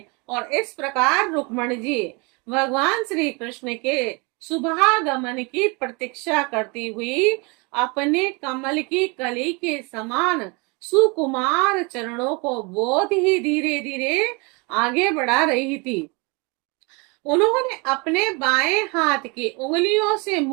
और इस प्रकार रुक्मणी जी भगवान श्री कृष्ण के शुभागमन की प्रतीक्षा करती हुई अपने कमल की कली के समान सुकुमार चरणों को बहुत ही धीरे धीरे आगे बढ़ा रही थी। उन्होंने अपने बाएं हाथ की उंगलियों से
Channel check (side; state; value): left; quieter; 29.6 dB